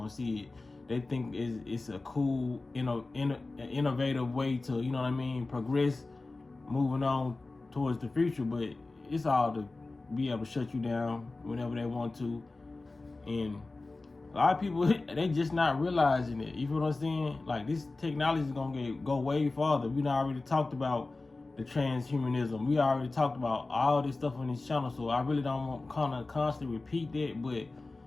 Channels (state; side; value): quieter; right; 3.3 dB